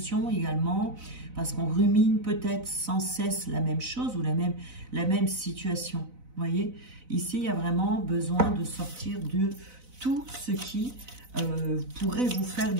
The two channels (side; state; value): left; late; 4.0 ms